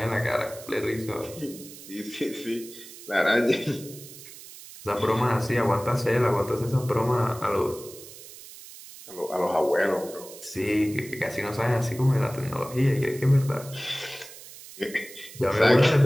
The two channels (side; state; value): right; noise; hiss, 16 dB below the sound